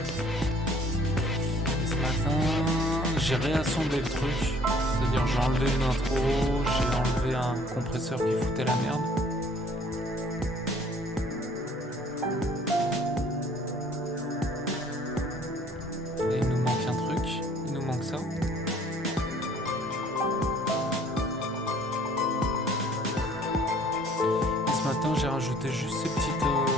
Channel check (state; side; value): normal; both; correlation 0.56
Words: Et ce matin, j'ai réassemblé le truc. C'est-à-dire, j'ai enlevé une intro, j'ai enlevé un compresseur qui foutait la merde. Et il nous manque un truc, il nous manque ça. Et ce matin, j'ai rajouté juste ces